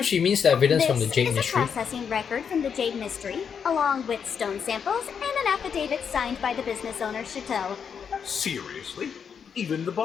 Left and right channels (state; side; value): quieter; right; 7.0 dB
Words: she means the evidence from the This Jade is a Mystery. processing record from the Jade Mystery, along with stone samples and an affidavit signed by the business owner, Chateau. Seriously? Even the